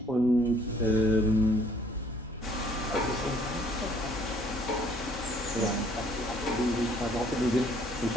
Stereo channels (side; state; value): both; normal; correlation 0.61